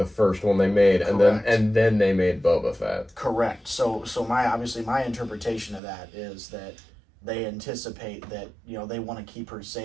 first one they made, Correct. and then they made Boba Fett. Correct. So my interpretation of that is that they anticipate that, they want to keep her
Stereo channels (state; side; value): drops out; left; at 5.8 s